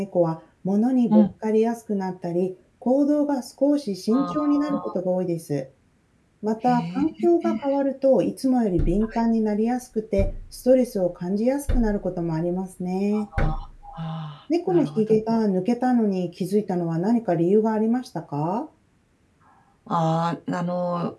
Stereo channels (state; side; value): identical; both; correlation 1.00